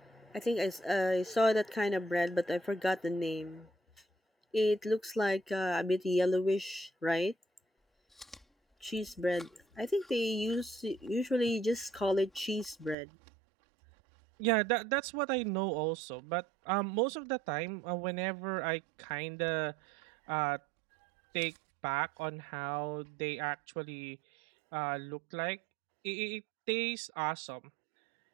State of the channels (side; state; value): left; drops out; at 13.0 s